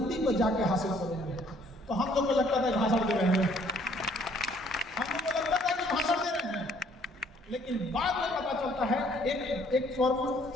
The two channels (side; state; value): both; normal; correlation 0.62